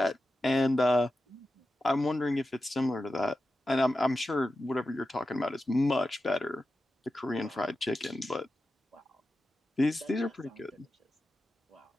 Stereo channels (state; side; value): normal; both; correlation 0.92